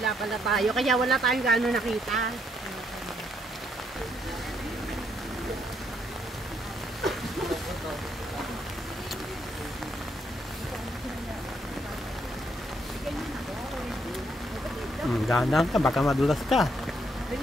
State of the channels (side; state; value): both; normal; correlation 0.73